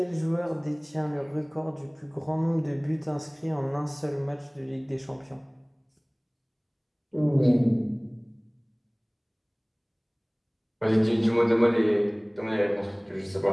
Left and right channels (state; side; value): identical; both; correlation 1.00